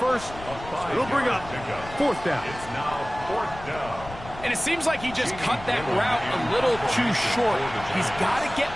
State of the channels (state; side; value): noise; left; rumble, 15 dB below the sound